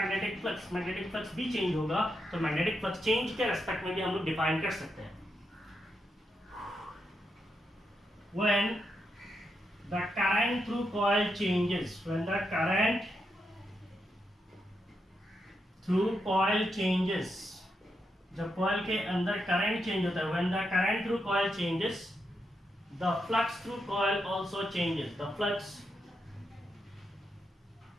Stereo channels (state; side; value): normal; both; correlation 0.84